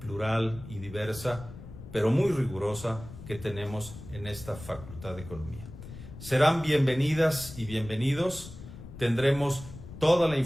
plural y diversa, pero muy rigurosa, que tenemos en esta Facultad de Economía. Serán bienvenidas y bienvenidos. Tendremos toda la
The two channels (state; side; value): noise; left; rumble, 14 dB below the sound